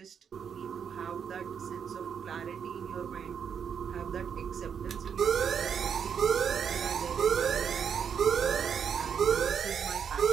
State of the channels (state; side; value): quieter; left; 7.4 dB